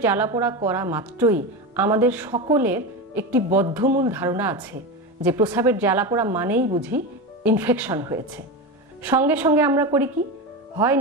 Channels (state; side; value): normal; both; correlation 0.20